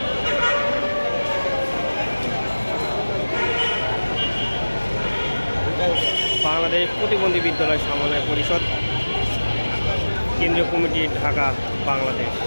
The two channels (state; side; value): inverted; both; correlation -1.00